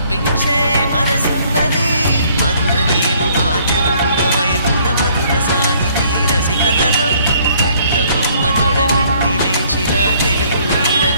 మనసున్నది. మధుర నీలు మా తెలుగు నాయకుల మధుర సాహితీ రసికతలో కట్టబొమ్మ తొడగొట్టి లేచిన తెలుగు వీర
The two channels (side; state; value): both; inverted; correlation -0.62